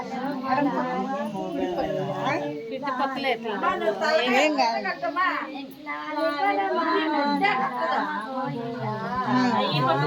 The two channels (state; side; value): identical; both; correlation 1.00